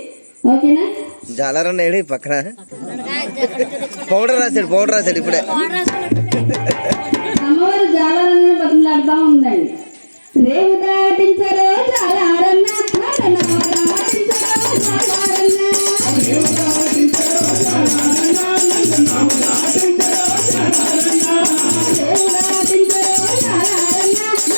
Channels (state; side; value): inverted; both; correlation -1.00